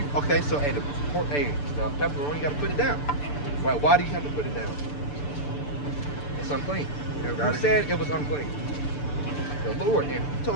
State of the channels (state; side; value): late; right; 6.9 ms